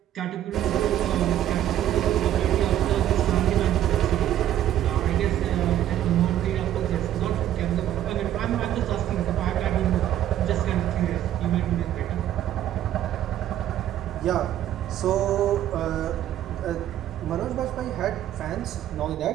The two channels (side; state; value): left; quieter; 11.9 dB